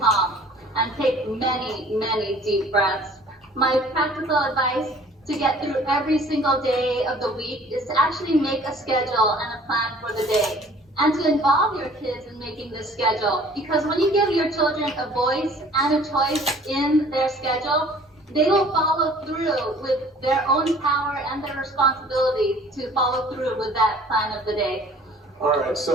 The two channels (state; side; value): normal; both; correlation 0.51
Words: calm, and take many, many deep breaths. My practical advice to get through every single day of the week is to actually make a schedule and a plan for the day, and to involve your kids in making this schedule. Because when you give your children a voice and a choice in their schedule, they will follow through with their own power and their responsibility to follow through with that plan of the day. All right,